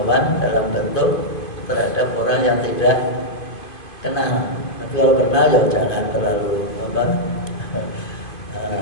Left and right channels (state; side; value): late; right; 2.5 ms